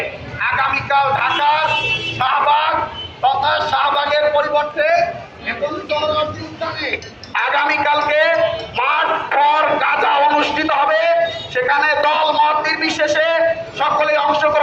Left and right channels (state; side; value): identical; both; correlation 1.00